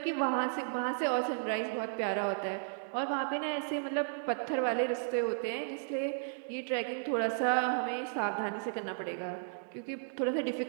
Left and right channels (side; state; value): left; silent; digital silence